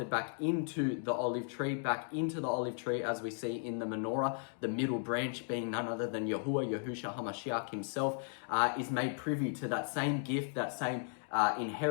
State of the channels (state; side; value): silent; right; 54 dB below the other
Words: back into the olive tree, as we see in the menorah, the middle branch being none other than Yahuwah, Yahushua HaMashiach himself, is made privy to that same gift, that same